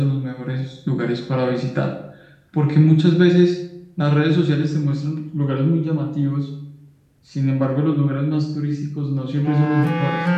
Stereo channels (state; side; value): identical; both; correlation 1.00